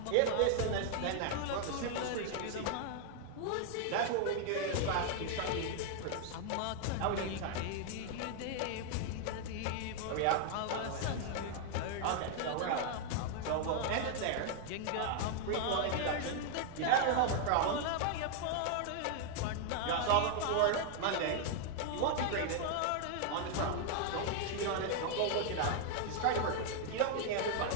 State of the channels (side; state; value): both; different; correlation 0.00